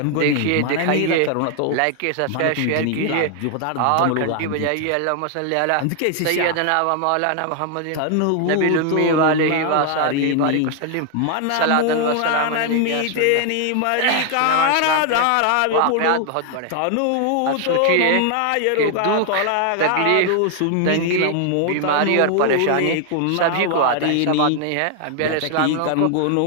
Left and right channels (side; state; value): both; different; correlation 0.00